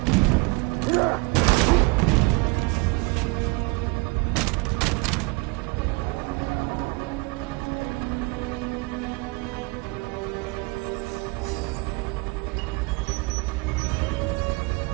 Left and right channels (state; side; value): quieter; left; 27.1 dB